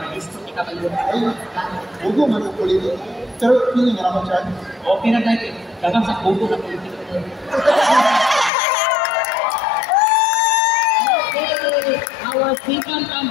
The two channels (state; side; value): drops out; right; at 8.5 s